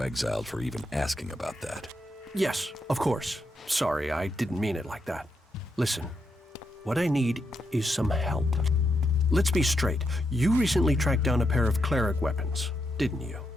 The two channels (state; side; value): normal; both; correlation 0.82